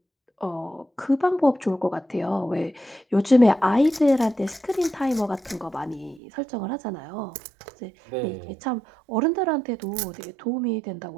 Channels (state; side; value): drops out; left; at 6.2 s